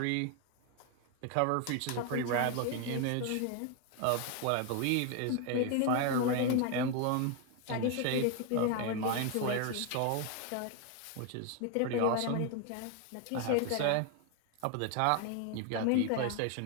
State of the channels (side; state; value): both; different; correlation 0.01